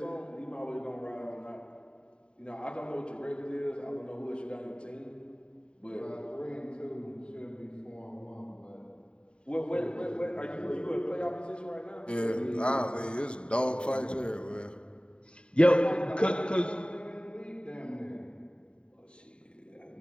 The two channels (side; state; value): right; late; 0.053 ms